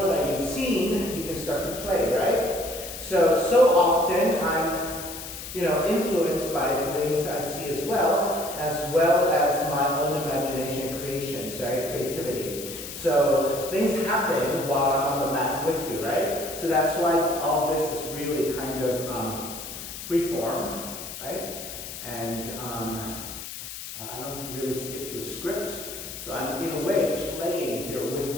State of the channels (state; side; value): noise; left; hiss, 10 dB below the sound